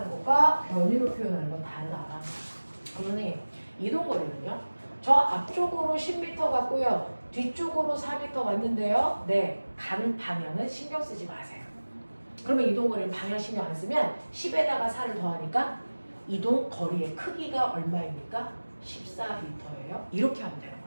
것과 변이로 표현하는 건 다르다. 그러니 이동거리는요, 저 앞쪽으로 10m 갔고요, 뒤쪽으로 4m 왔는데요, 네, 가는 방향은 신경 쓰지 마세요. 그러면 이동거리는 방향 신경 안 쓰면 10에다가 4를 더하니까 이동거리의 크기가 얼마입니까? 14m예요. 이렇게 하면 되는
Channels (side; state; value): both; inverted; correlation -1.00